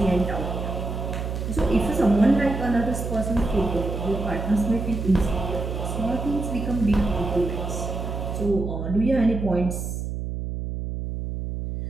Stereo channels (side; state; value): right; noise; hum, 4 dB below the sound